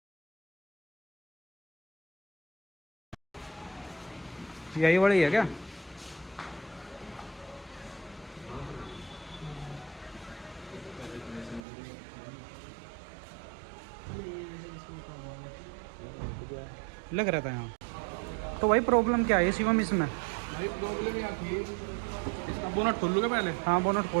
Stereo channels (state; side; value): drops out; left; at 11.6 s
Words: यही वाली है क्या? लग रहा था यहाँ। तो भाई प्रॉब्लम क्या है शिवम इसमें? भाई प्रॉब्लम यहाँ थी, इसका बोनट खोल लूँगा पहले। हाँ बोनट